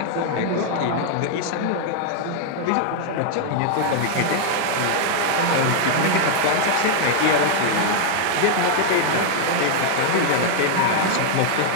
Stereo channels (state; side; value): different; both; correlation 0.00